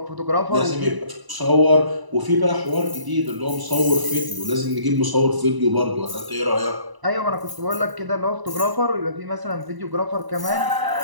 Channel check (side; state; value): left; late; 1.0 ms